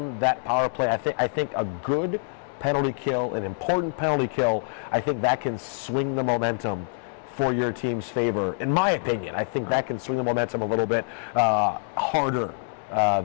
that power play, I think a good penalty kill, an important penalty kill, I think that can swing the momentum for your team's favor. In my opinion, I think that can swing the momentum a little bit harder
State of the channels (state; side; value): silent; right; digital silence